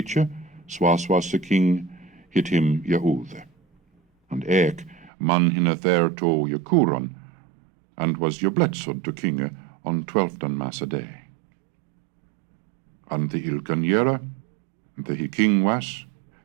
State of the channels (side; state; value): left; drops out; at 5.1 s